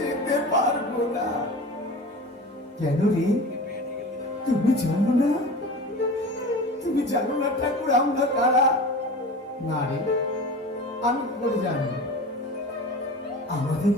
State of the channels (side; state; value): both; normal; correlation 0.34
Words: যেতে পারবো না। কেন রে, তুমি জানো না? তুমি জানো না ঠাকুর আমরা কারা? না রে, আমি কি করে জানবো? আমাদের